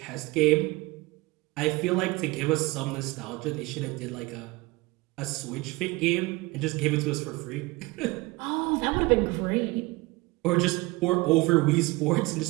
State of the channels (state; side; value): quieter; left; 23.0 dB